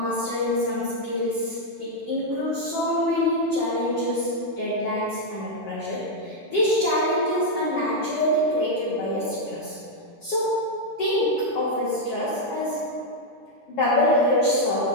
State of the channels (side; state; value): both; normal; correlation -0.01